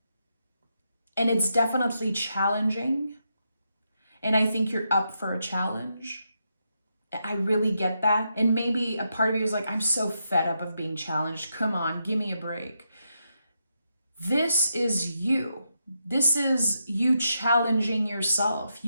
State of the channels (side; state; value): both; inverted; correlation -0.83